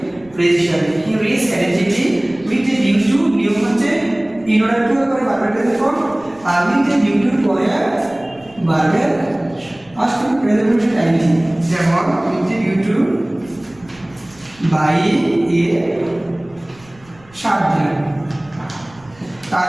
ফ্রেজ হিসেবে। He reach energetic with a due to, নিয়ম হচ্ছে ইন অর্ডার টু এর পরে ভার্বের প্রেজেন্ট ফর্ম, আর উইথ এ ডিউ টু পরে ভার্বের পাস্ট প্রেজেন্ট ফর্ম টাইম। যেমন with a due to buy a shirt দিলাম।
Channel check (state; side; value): noise; right; rumble, 27 dB below the sound